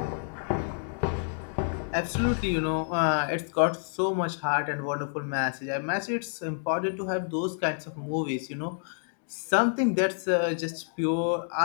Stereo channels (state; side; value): silent; right; digital silence